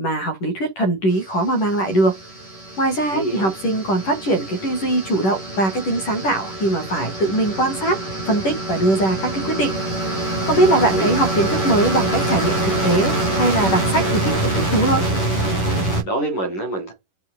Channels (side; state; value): right; late; 10 ms